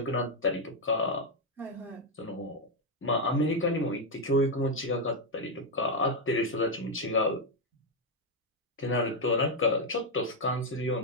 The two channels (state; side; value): normal; both; correlation 0.01